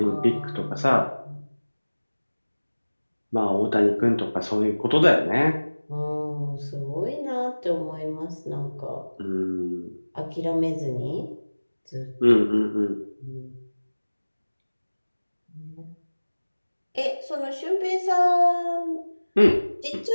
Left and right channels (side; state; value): both; inverted; correlation -1.00